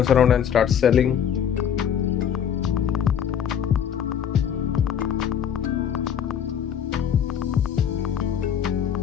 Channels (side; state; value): right; quieter; 8.7 dB